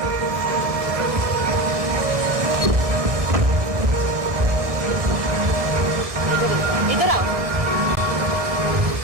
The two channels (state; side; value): late; left; 1.7 ms